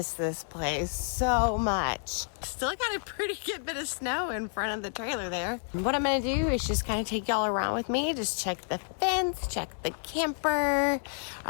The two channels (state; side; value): silent; right; 58 dB below the other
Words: this place so much. Still got a pretty good bit of snow in front of the trailer there. What I'm gonna do is just kind of take y'all around with me, just check the fence, check the camper,